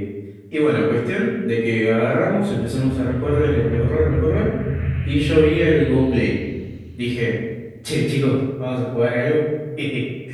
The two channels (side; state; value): both; identical; correlation 1.00